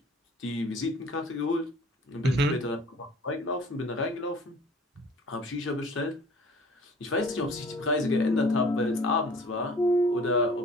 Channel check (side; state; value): both; normal; correlation 0.49